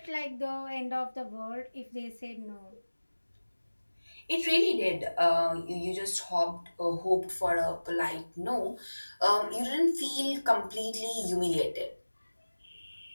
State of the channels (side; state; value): both; inverted; correlation -1.00